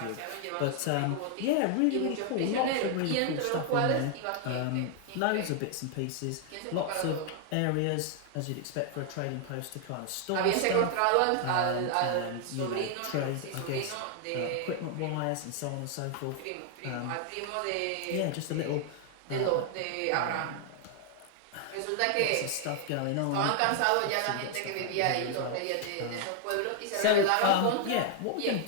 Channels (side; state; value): both; different; correlation 0.00